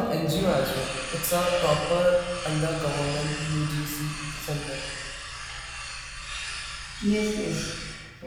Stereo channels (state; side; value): identical; both; correlation 1.00